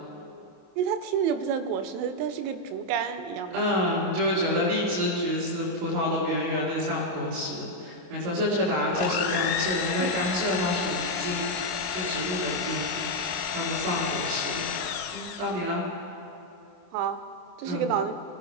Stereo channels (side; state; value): left; late; 27 ms